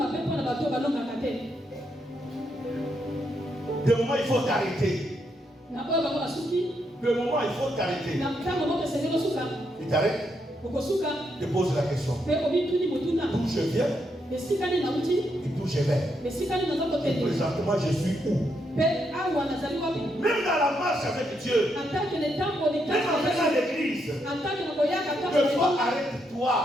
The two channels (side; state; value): both; normal; correlation 0.79